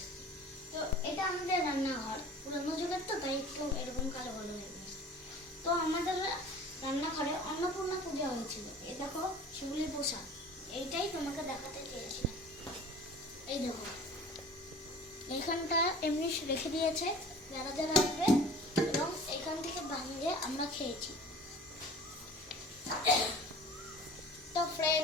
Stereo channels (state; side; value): normal; both; correlation 0.44